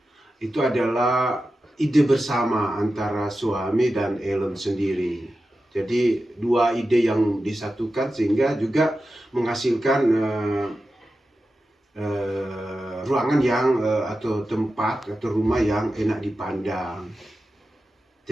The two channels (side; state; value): both; normal; correlation 0.92